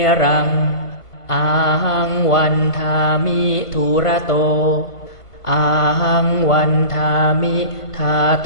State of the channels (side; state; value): right; late; 1.4 ms